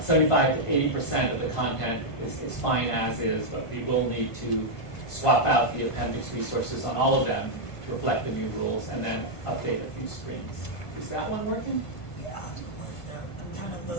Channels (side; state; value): right; late; 1.5 ms